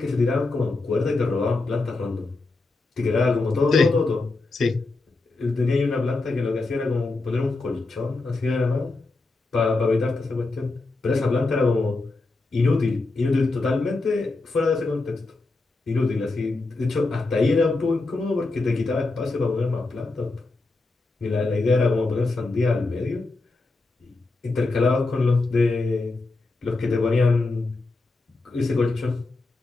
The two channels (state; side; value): quieter; right; 3.4 dB